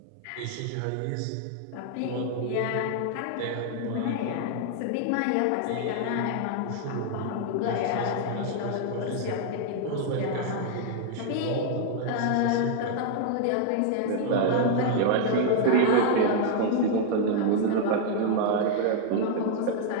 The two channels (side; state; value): both; different; correlation 0.00